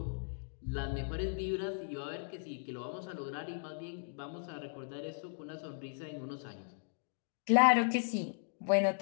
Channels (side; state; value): right; silent; digital silence